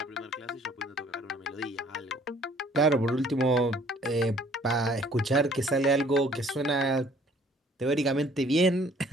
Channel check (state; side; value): normal; both; correlation 0.58